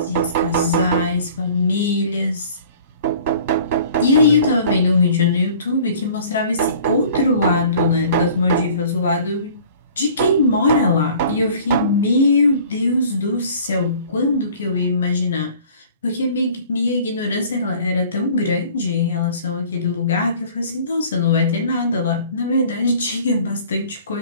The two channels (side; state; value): both; inverted; correlation -0.49